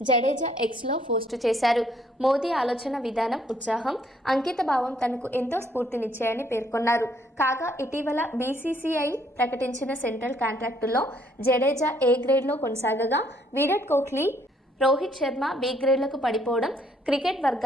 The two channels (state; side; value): normal; both; correlation 0.67